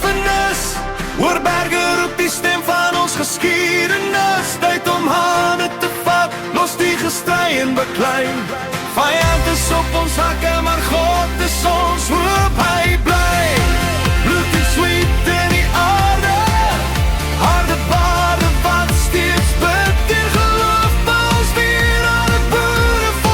oor berge roep die stem van ons geskiedenis. Tyd om hande te vat, los die gestry en beklei. Vyand is op ons hakke, maar God is ons hoop, hy bly. Bloed en sweet in die aarde, harde bade wat steeds bid en geloof. Ons weer aan het boere,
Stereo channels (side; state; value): both; identical; correlation 1.00